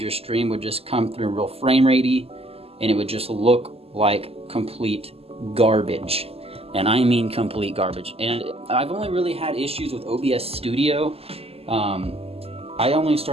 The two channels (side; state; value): left; late; 0.29 ms